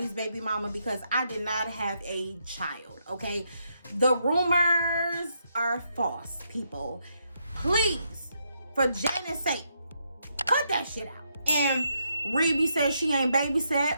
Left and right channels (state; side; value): inverted; both; correlation -0.78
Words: baby mama because I did not have a child, okay? The rumors are false, people. Please, for Janet's sake, cut that shit out. And Rebe says she ain't